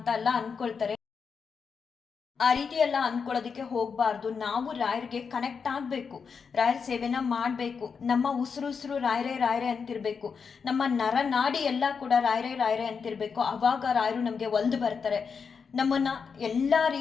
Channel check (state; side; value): quieter; right; 5.8 dB